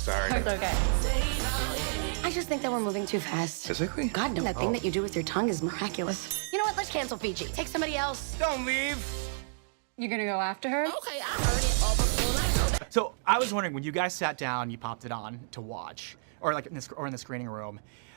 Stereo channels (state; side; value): silent; left; digital silence